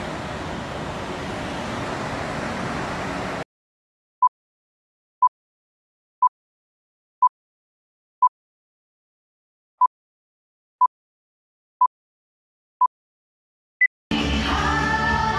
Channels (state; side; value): identical; both; correlation 1.00